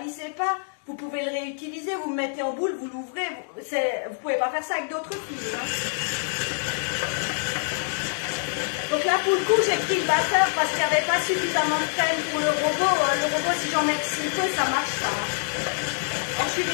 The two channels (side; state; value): right; silent; digital silence